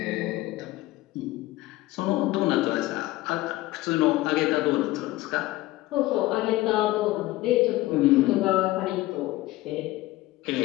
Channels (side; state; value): right; quieter; 17.9 dB